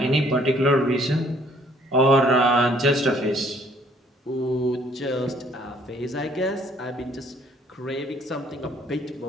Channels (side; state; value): both; normal; correlation 0.61